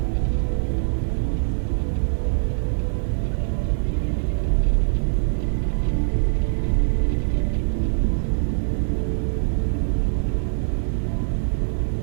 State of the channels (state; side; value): silent; left; 61 dB below the other